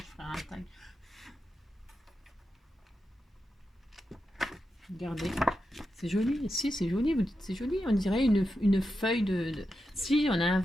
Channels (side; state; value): both; normal; correlation 0.88